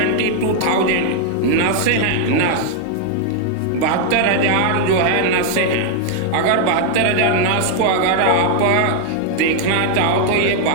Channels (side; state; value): both; different; correlation 0.00